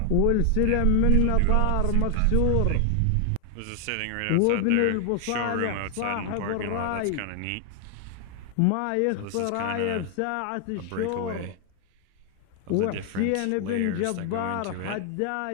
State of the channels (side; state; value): both; different; correlation 0.00